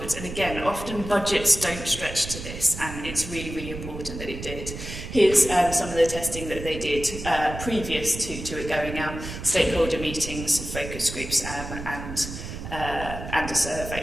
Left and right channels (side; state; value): right; noise; rumble, 9 dB below the sound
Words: And again, often budgets don't stretch to this, and it's really, really important that it did. Here's some of the testing that they did previous to it going out: stakeholder meetings, focus groups, and a